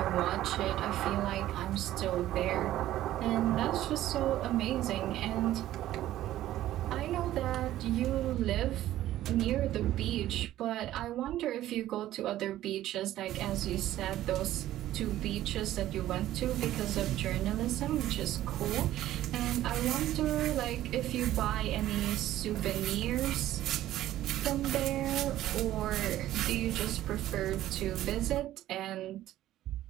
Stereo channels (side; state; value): left; quieter; 13.8 dB